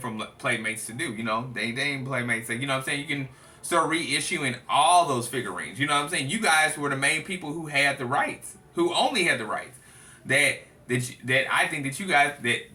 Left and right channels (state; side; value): identical; both; correlation 1.00